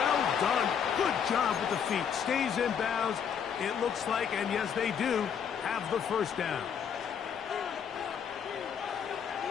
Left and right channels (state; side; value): quieter; right; 7.7 dB